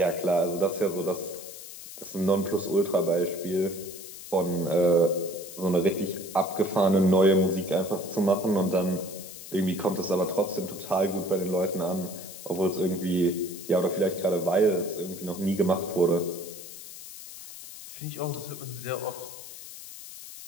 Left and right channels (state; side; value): noise; left; hiss, 13 dB below the sound